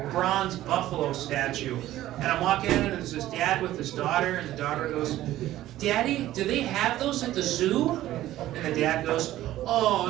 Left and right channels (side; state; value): left; quieter; 14.4 dB